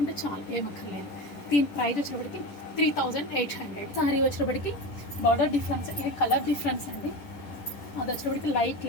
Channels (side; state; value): right; late; 10 ms